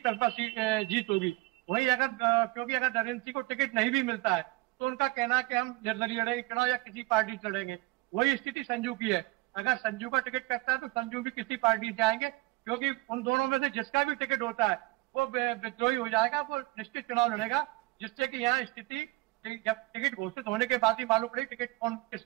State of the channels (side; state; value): left; quieter; 22.5 dB